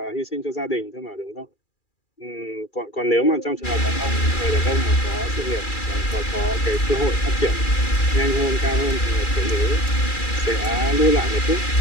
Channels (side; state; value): right; late; 2.4 ms